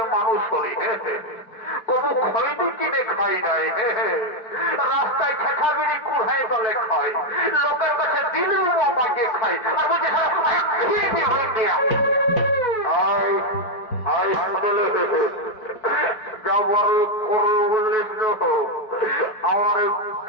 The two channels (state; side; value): late; right; 4.6 ms